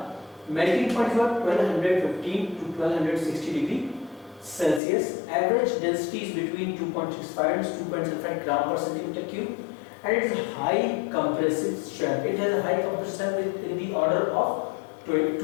Melting point is 1215 to 1260 degree Celsius. Average density is between 2.65 and 2.75 gram per centimeter cube, and it is high compressive strength. It has a high compressive strength in the order of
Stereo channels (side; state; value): right; drops out; at 4.8 s